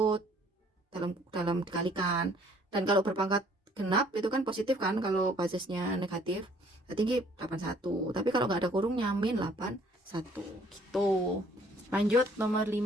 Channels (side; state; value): both; normal; correlation 0.60